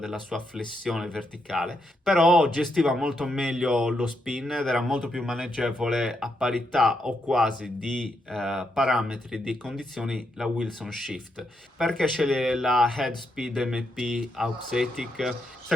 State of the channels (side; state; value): both; normal; correlation 0.80